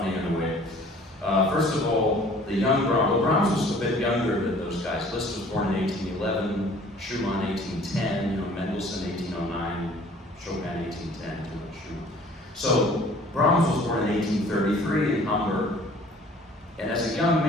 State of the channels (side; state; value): both; normal; correlation 0.52